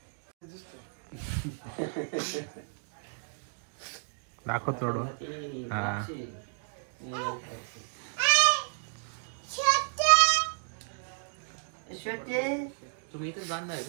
दाखव थोडं. हा तुम्ही इथं जाणार आहे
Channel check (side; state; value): left; silent; 56 dB below the other